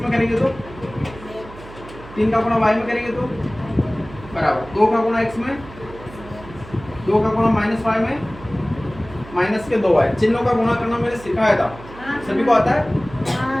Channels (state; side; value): noise; right; hum, 17 dB below the sound